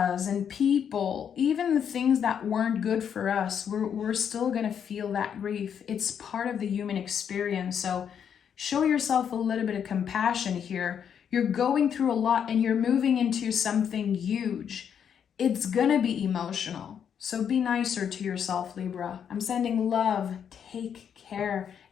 and people, even the things that weren't good for us, we're still going to feel that grief. It's part of the human experience. So show yourself a little bit of compassion here. You're going through a lot and you're moving into something huge. It's going to be emotional. So be nicer to yourself, Libra. I'm sending love. Take care.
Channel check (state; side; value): quieter; right; 8.1 dB